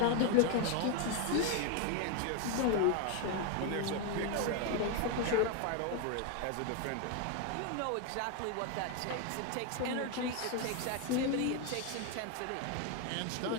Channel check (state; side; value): different; both; correlation 0.01